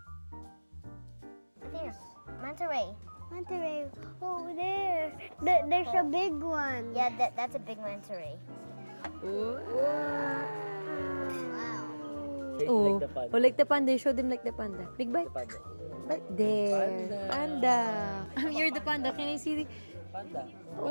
There's manta ray. Manta ray. Oh, there. There's a big one. Yeah, that's a big manta ray. Ooh. Wow. Oh, Like the panda. oh, like the panda. Show them like the panda. Big bite. Panda. Right there. Panda. You're the panda. Can I see the... Panda.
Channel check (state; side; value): inverted; both; correlation -1.00